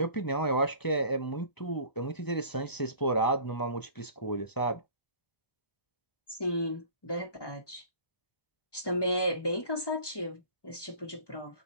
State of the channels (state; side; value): late; right; 1.1 ms